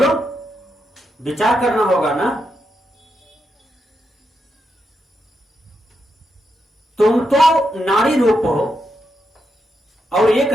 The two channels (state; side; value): normal; both; correlation 0.84